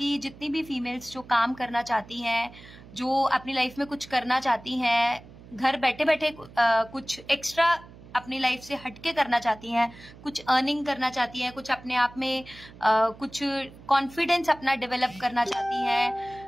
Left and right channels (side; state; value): right; noise; hum, 20 dB below the sound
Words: जितनी भी फीमेल्स जो काम करना चाहती हैं, जो अपनी लाइफ में कुछ करना चाहती हैं, घर बैठे बैठे कुछ एक्स्ट्रा अपनी लाइफ से हटके करना चाहती हैं, कुछ अर्निंग करना चाहती हैं, कुछ अपने आप में कुछ कॉन्फिडेंस अपना डेवलप करना चाहती हैं,